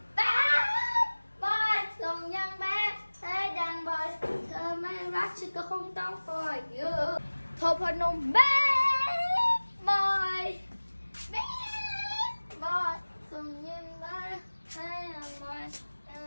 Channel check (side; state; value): both; inverted; correlation -1.00